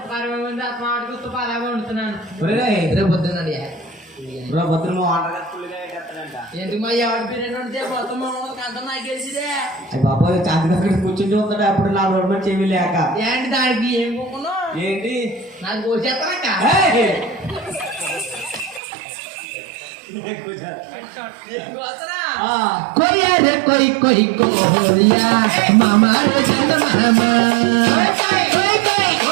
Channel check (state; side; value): drops out; left; at 18.8 s